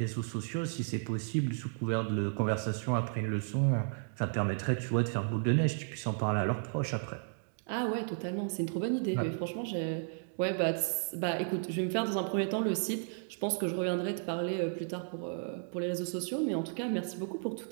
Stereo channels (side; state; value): left; silent; digital silence